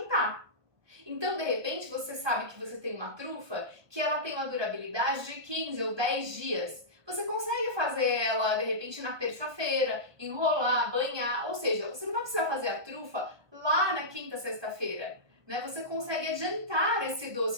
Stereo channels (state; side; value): late; left; 1.5 ms